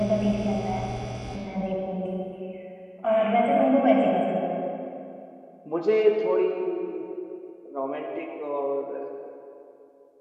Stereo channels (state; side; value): identical; both; correlation 1.00